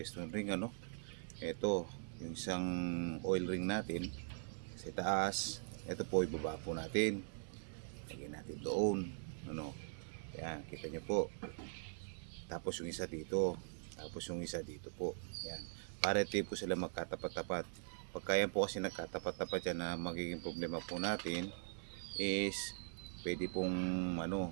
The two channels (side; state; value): left; silent; digital silence